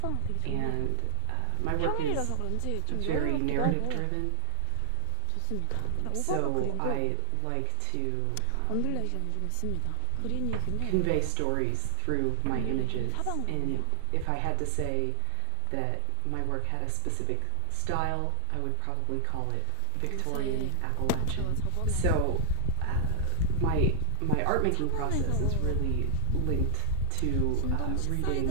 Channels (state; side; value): different; both; correlation 0.00